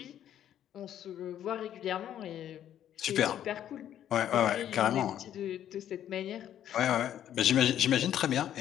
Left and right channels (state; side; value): quieter; right; 10.8 dB